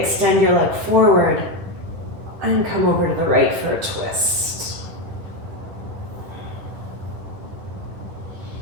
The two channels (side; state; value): left; late; 10 ms